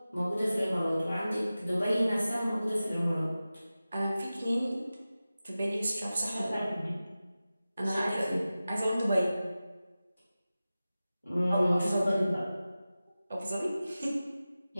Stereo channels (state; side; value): inverted; both; correlation -0.95